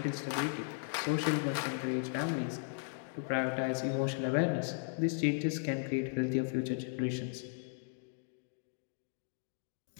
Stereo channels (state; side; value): silent; right; digital silence